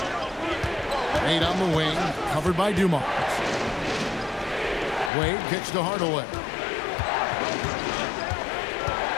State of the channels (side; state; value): right; drops out; at 5.1 s